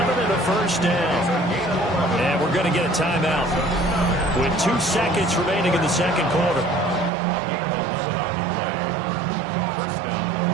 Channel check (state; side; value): drops out; left; at 7.1 s